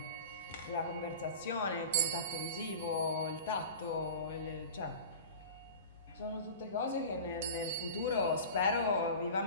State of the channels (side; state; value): both; inverted; correlation -0.34